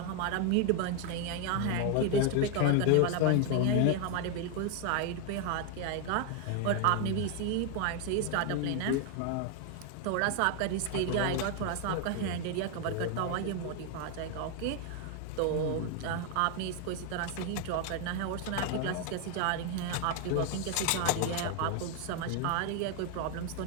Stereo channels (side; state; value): both; different; correlation 0.01